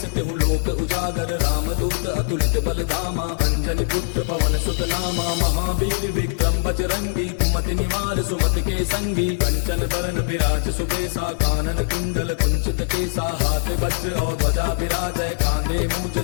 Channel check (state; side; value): silent; right; 64 dB below the other